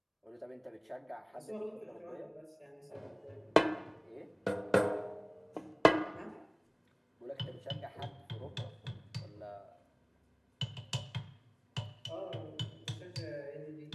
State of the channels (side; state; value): both; identical; correlation 1.00